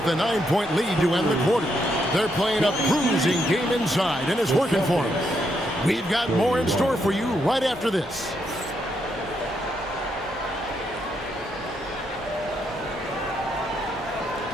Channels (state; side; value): normal; both; correlation 0.78